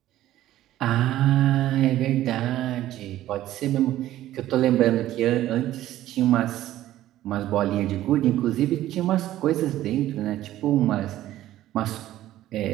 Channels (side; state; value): left; quieter; 13.9 dB